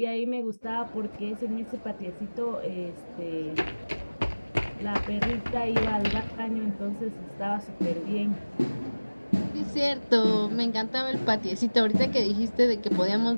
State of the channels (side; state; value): both; inverted; correlation -1.00